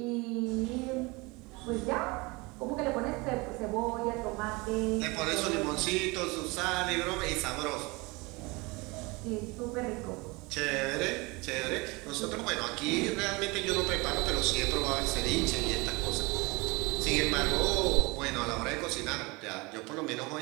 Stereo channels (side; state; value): left; quieter; 25.2 dB